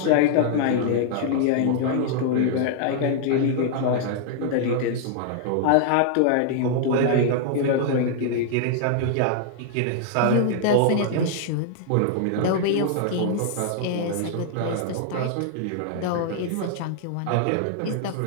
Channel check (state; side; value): different; both; correlation -0.01